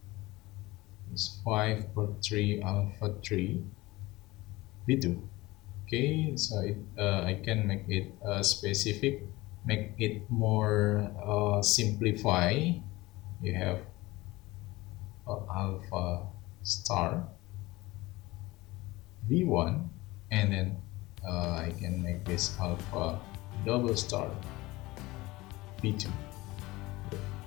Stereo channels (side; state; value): right; quieter; 20.2 dB